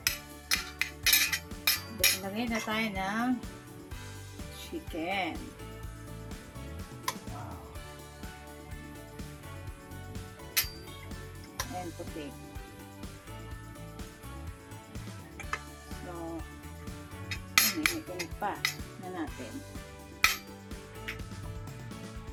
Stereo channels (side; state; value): both; identical; correlation 1.00